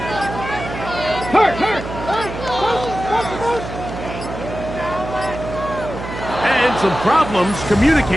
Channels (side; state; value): right; noise; hum, 9 dB below the sound